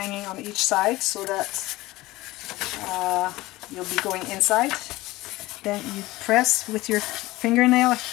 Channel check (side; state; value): right; quieter; 18.9 dB